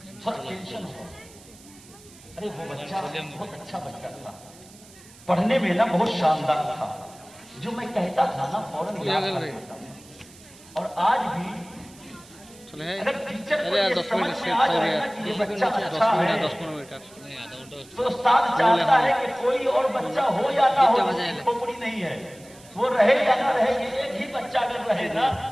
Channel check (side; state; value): right; noise; hiss, 23 dB below the sound